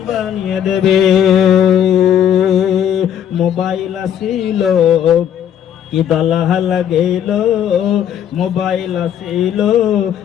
বানিয়ে দেবে। মোবাইল আসিল কি দলাহ লাগেল, মোবাইল আসিল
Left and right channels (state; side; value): quieter; right; 9.7 dB